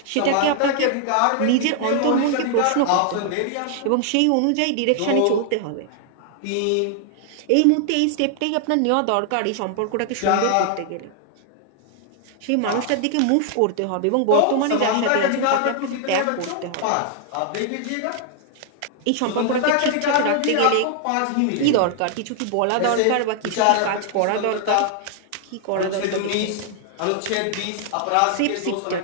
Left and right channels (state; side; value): different; both; correlation 0.00